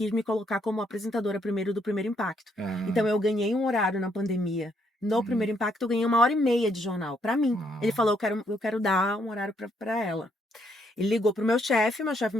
me colocar como apresentadora primeiro do Primeiro Impacto. Então eu ganhei um horário na pandemia No Primeiro Impacto, eu ganhei 1h30 de jornal, pra mim. Ah. Ele falou, eu quero dar um horário pra ela. Ele ligou pro meu chefe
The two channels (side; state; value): both; normal; correlation 0.72